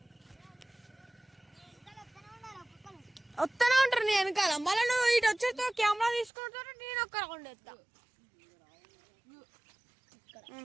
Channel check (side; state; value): left; drops out; at 6.3 s